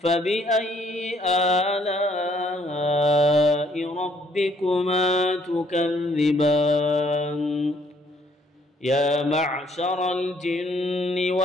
آلاء ربكما تكذبان يا معشر الجن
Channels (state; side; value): normal; both; correlation 0.66